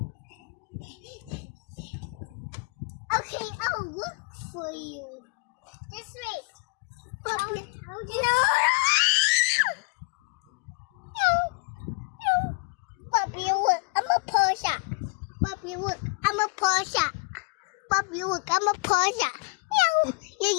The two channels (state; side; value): quieter; right; 31.8 dB